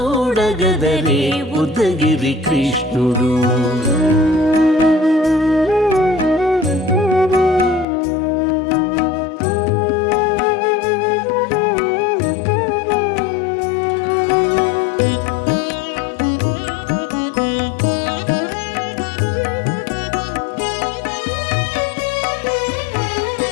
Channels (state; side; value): drops out; right; at 7.9 s